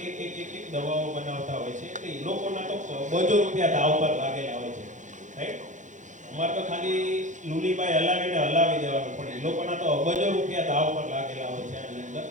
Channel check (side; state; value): left; late; 0.36 ms